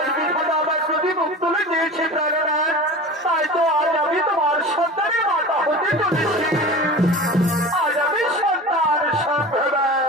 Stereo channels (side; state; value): both; normal; correlation 0.34